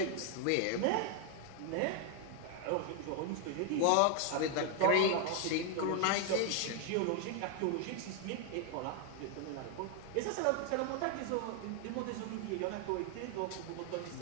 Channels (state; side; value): different; both; correlation 0.00